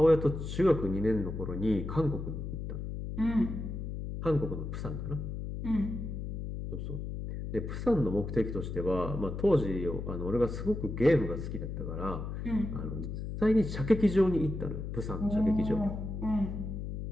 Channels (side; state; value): left; noise; hum, 5 dB below the sound